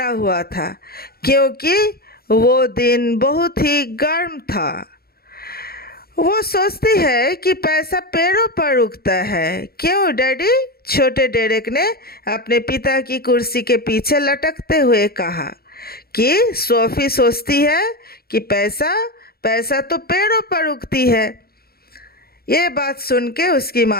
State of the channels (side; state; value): right; late; 0.44 ms